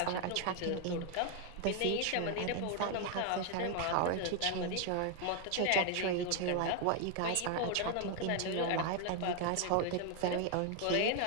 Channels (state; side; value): different; both; correlation 0.00